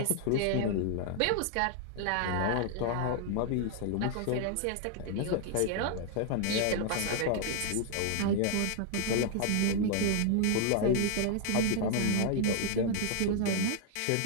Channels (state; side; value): different; both; correlation 0.00